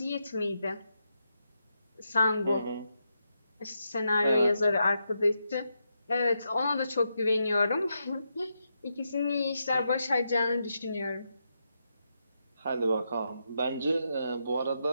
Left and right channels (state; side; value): inverted; both; correlation -0.83